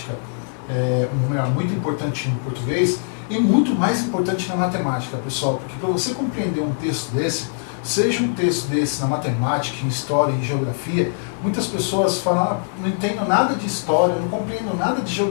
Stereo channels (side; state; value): right; silent; 64 dB below the other